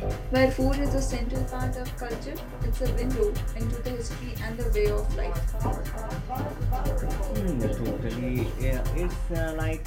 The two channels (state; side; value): identical; both; correlation 1.00